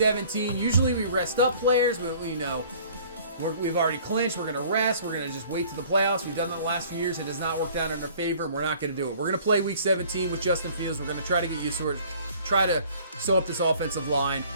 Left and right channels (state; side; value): inverted; both; correlation -0.52